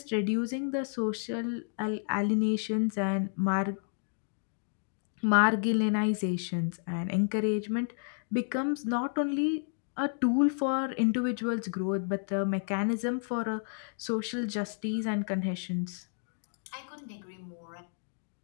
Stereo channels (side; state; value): right; silent; digital silence